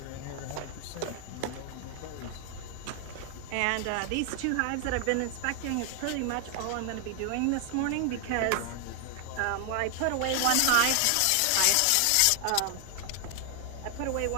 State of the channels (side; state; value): both; different; correlation 0.00